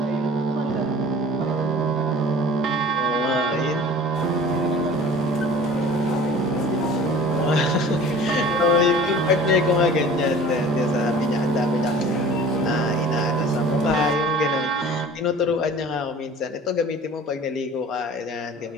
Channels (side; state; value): both; normal; correlation 0.44